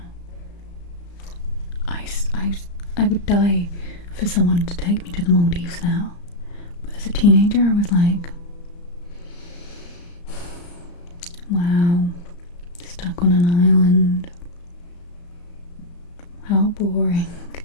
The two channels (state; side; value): late; right; 34 ms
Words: I would die for someone to take me to the Maldives now, but as a teenager I was like, wow, stuck on an island, how boring.